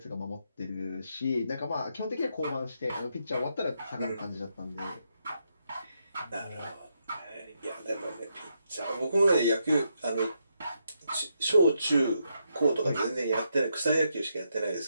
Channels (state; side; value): inverted; both; correlation -0.80